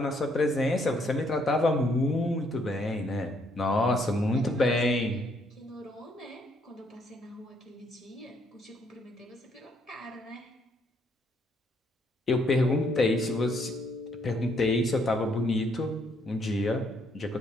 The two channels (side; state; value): both; normal; correlation 0.69